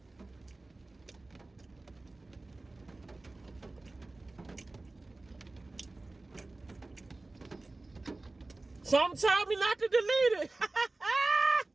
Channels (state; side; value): quieter; left; 3.1 dB